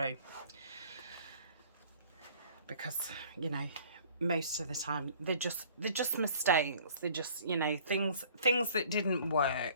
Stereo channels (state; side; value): inverted; both; correlation -0.52